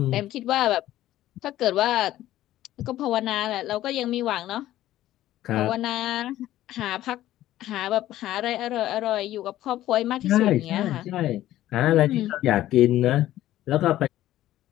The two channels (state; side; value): quieter; right; 14.1 dB